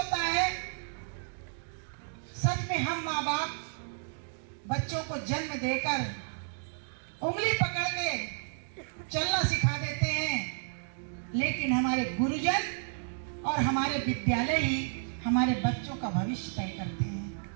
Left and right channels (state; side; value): silent; left; digital silence